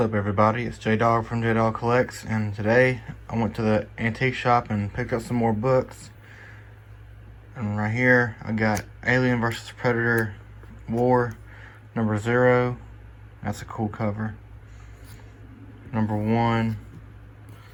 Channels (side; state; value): both; identical; correlation 1.00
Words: up, everybody? It's J-Dog from J-Dog Collects, and today I went to the antique shop and picked up some more books. And right here I got Alien vs. Predator War number 0. That's a cool cover. Number 1,